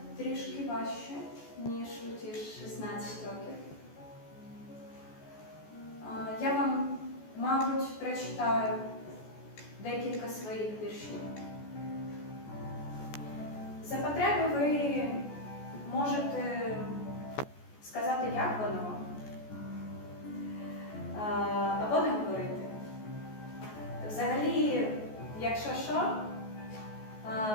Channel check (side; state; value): right; late; 14 ms